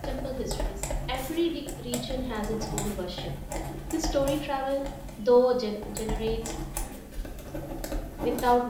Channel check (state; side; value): identical; both; correlation 1.00